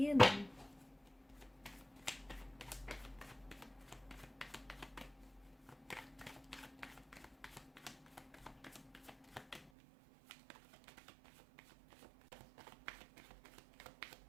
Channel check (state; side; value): drops out; left; at 9.7 s